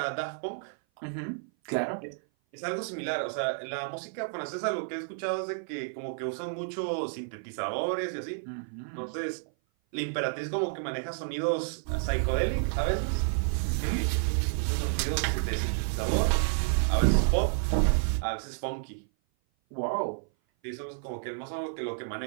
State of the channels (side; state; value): left; silent; 56 dB below the other